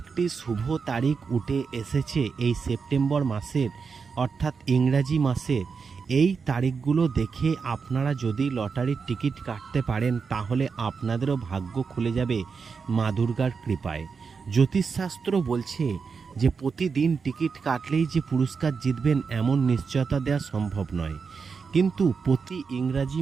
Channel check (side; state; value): left; quieter; 5.4 dB